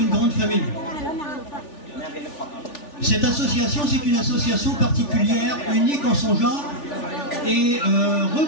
grande famille. Cette association, c'est une association particulière, unique en son genre, et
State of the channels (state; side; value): late; right; 3.4 ms